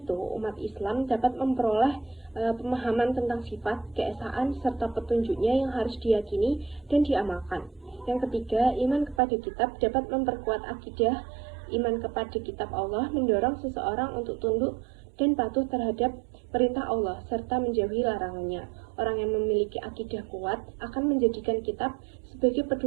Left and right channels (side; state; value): left; drops out; at 9.2 s